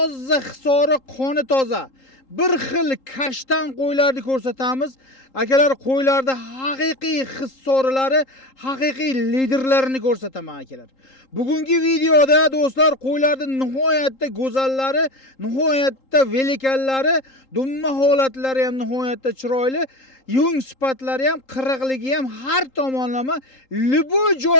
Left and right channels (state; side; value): late; right; 3.8 ms